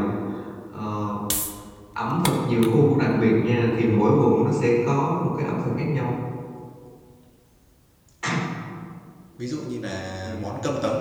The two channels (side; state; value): both; identical; correlation 1.00